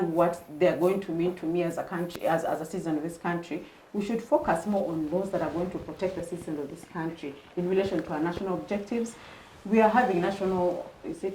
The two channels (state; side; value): identical; both; correlation 1.00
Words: what they're going to mean to me as a country, as a citizen of this country. We should focus more on laws that are going to protect the citizens of this country in relation to our national objectives. We are having national,